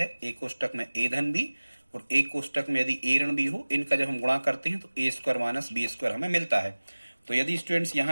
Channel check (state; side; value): inverted; both; correlation -1.00